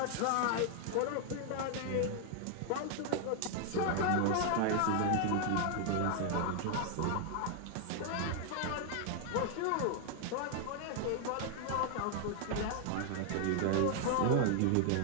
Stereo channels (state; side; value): different; both; correlation 0.00